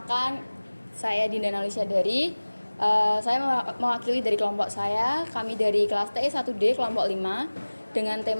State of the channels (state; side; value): inverted; both; correlation -1.00